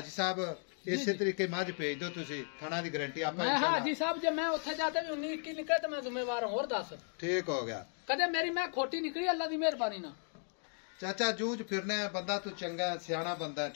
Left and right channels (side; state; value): right; silent; 54 dB below the other